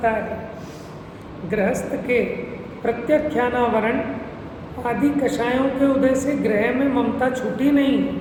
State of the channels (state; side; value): identical; both; correlation 1.00